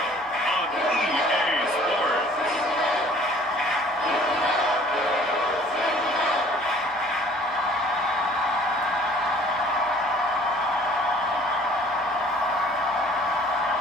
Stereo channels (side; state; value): both; normal; correlation 0.52